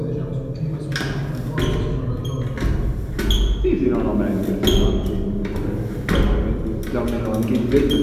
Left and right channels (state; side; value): identical; both; correlation 1.00